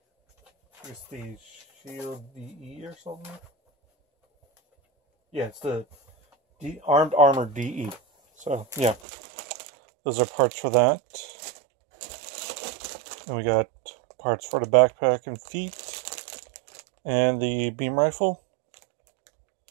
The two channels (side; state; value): left; drops out; at 9.0 s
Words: It's the Shield DE or something. Yeah, it's the Armed Armor DE. So, yeah. Those are parts for that. And we got parts for the backpack and feet. And the beam rifle.